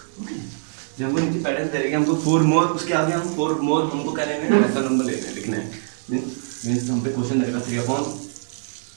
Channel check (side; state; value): left; silent; digital silence